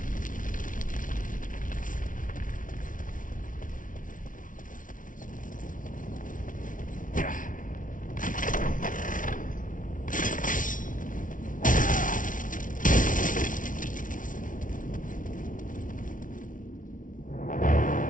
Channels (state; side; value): late; right; 0.38 ms